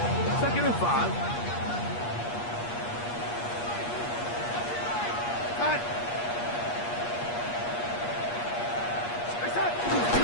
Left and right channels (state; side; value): late; right; 8.4 ms